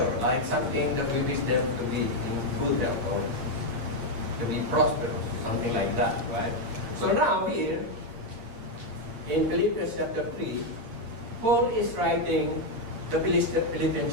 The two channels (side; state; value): left; late; 8.6 ms